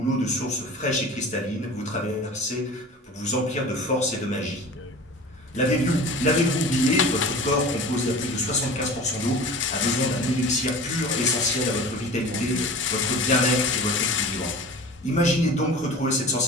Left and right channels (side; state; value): both; normal; correlation 0.38